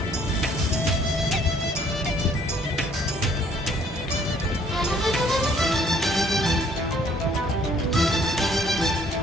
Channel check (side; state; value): both; normal; correlation 0.61